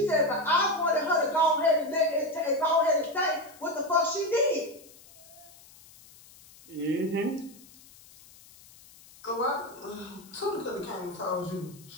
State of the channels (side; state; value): left; noise; hiss, 23 dB below the sound